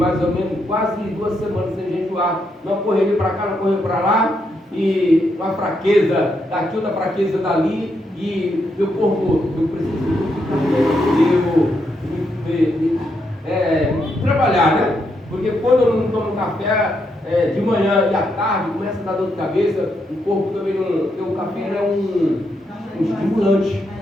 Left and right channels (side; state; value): both; normal; correlation 0.80